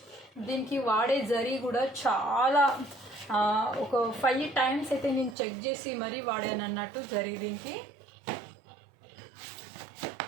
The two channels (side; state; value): left; drops out; at 5.4 s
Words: దీనికి వాడే జరీ కూడా చాలా ఒక 5 times అయితే నేను చెక్ చేసి మరీ వాడాను అన్నట్టు జరీ దీనికి.